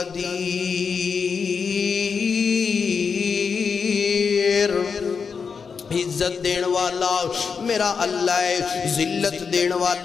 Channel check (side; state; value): right; quieter; 5.8 dB